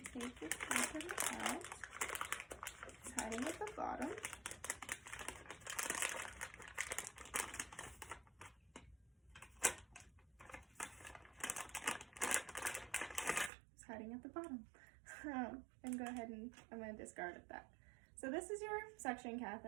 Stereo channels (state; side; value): drops out; left; at 13.5 s